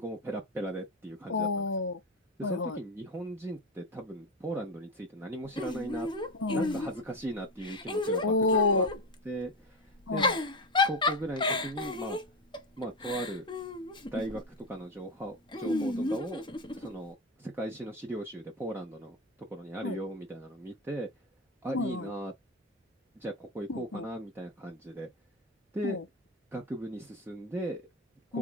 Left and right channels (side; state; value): both; normal; correlation 0.16